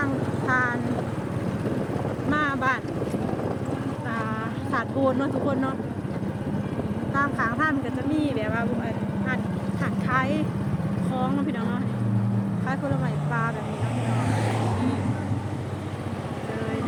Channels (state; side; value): identical; both; correlation 1.00